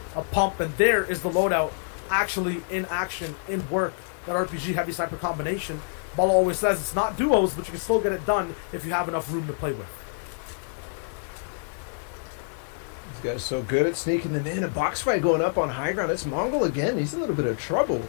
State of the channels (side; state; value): right; silent; digital silence